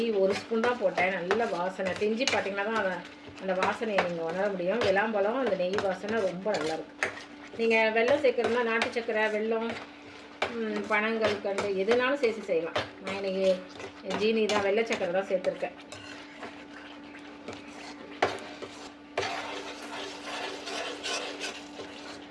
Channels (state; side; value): identical; both; correlation 1.00